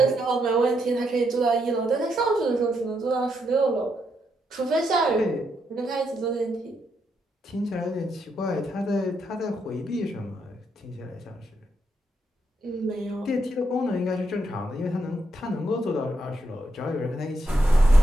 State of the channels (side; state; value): both; normal; correlation 0.79